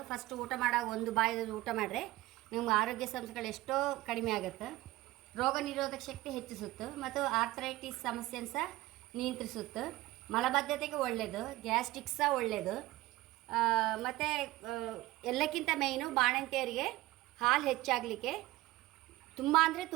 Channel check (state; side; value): quieter; left; 18.0 dB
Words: ಫಸ್ಟ್ ಊಟ ಮಾಡಾಗ ಒಂದು ಬಾಯಿದು ಊಟ ಮಾಡಿದ್ರೆ ನಮ್ಗೆ ಆರೋಗ್ಯ ಸಮಸ್ಯೆಗಳು ಎಷ್ಟೋ ಕಡಿಮೆ ಆಗುತ್ತೆ. ರೋಗ ನಿರೋಧಕ ಶಕ್ತಿ ಹೆಚ್ಚಿಸುತ್ತೆ ಮತ್ತು ಆರ್ಥರೈಟಿಸ್ ಸಮಸ್ಯೆನ ಸಹ ನಿಯಂತ್ರಿಸುತ್ತೆ. ಮಲಬದ್ಧತೆಗೆ ಒಳ್ಳೆಯದು, ಗ್ಯಾಸ್ಟ್ರಿಕ್ ಸಹ ಒಳ್ಳೆಯದು. ಮತ್ತು ಎಲ್ಲಕ್ಕಿಂತ ಮೇಯ್ನು ಬಾಣಂತಿಯರಿಗೆ ಹಾಲು ಹೆಚ್ಚಾಗಲಿಕ್ಕೆ ತುಂಬ ಅಂದರೆ